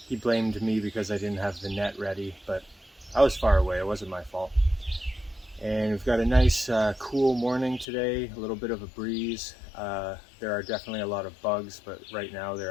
He blamed me because I didn't have the net ready, but I was far away, it wasn't my fault. And we've got a nice cool morning today, a little bit of a breeze. There are definitely a lot of bugs, but right now they're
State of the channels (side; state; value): right; drops out; at 7.9 s